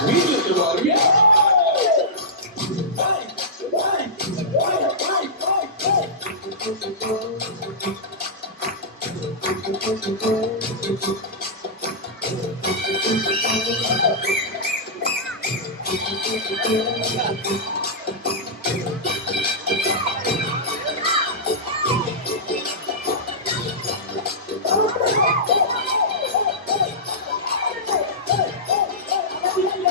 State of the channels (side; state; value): both; normal; correlation -0.14